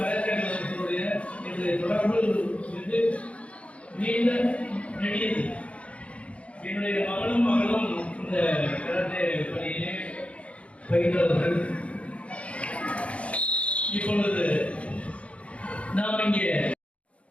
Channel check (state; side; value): late; right; 0.063 ms